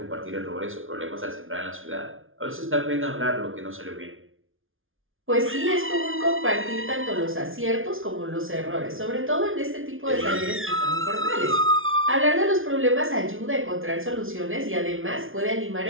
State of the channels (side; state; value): left; late; 0.59 ms